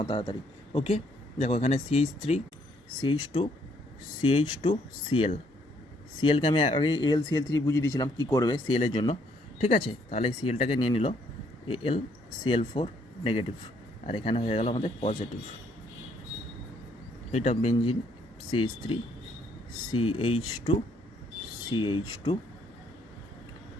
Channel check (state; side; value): normal; both; correlation 0.68